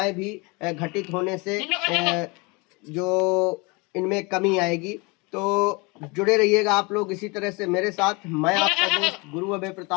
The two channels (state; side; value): quieter; right; 27.5 dB